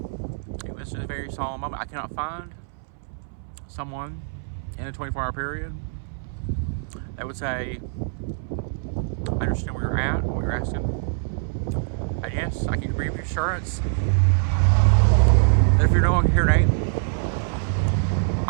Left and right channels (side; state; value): left; silent; 62 dB below the other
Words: this is a very solemn moment, I cannot find someone in a 24-hour period that would say, I understand where you're at, what you're asking, and yes, I can give you assurance that if you're no longer here, Nate,